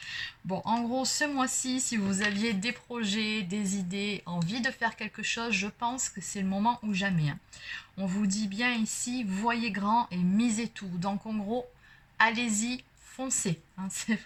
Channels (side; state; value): both; identical; correlation 1.00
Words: Bon, en gros, ce mois-ci, si vous aviez des projets, des idées, envie de faire quelque chose, je pense que c'est le moment ou jamais. On vous dit bien ici, voyez grand et misez tout. Donc, en gros, allez-y, foncez. C'est